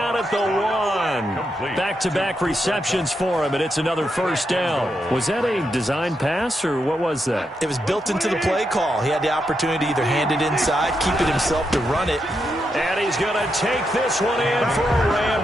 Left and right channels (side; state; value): both; normal; correlation 0.83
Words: at the 1. Back-to-back receptions for him, and it's another first down. Was that a design pass, or what was that? It was built into the play call. He had the opportunity to either hand it inside, keep it himself to run it. And he's going to take this one in for a